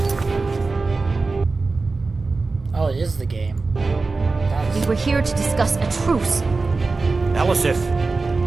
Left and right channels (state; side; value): quieter; left; 3.8 dB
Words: Oh, it is the game. We were here to discuss a truce. Elisif,